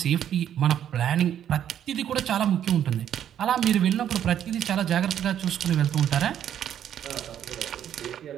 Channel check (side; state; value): left; quieter; 10.0 dB